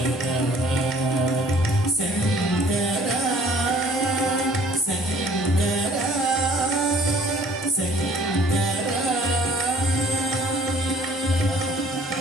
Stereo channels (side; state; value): both; normal; correlation 0.55